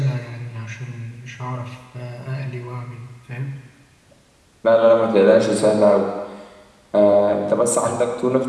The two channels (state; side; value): identical; both; correlation 1.00